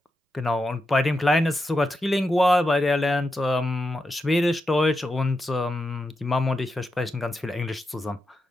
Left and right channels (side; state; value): both; normal; correlation 0.87